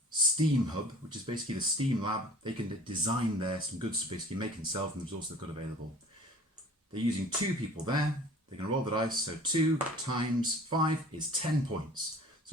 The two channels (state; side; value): normal; both; correlation 0.46